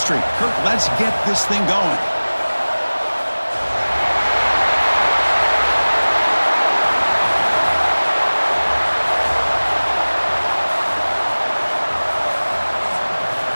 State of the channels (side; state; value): both; inverted; correlation -1.00